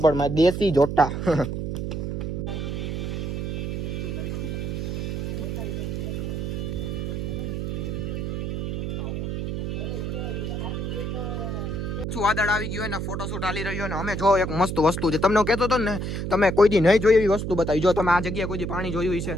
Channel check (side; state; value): right; noise; hum, 3 dB below the sound